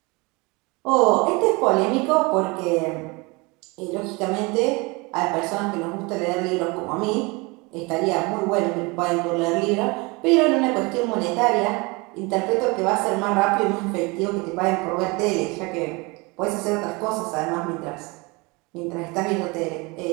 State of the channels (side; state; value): left; quieter; 26.6 dB